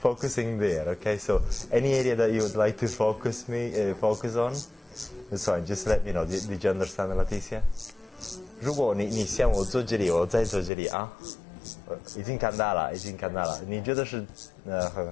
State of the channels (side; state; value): right; drops out; at 10.7 s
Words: there. Okay, so any area that you would like to focus on, it's fine. Just let me know. Did you understand, Leticia? 如果你像我坐这里，我再坐这里啊，已经看到了。你觉得是